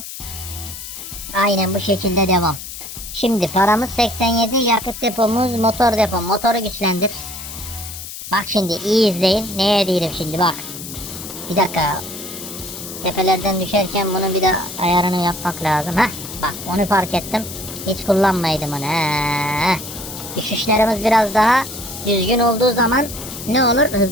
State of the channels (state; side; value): noise; left; hiss, 10 dB below the sound